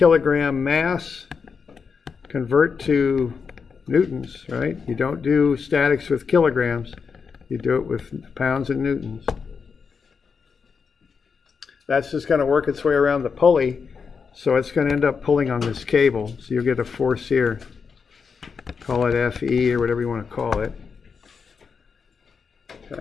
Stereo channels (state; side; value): quieter; right; 5.7 dB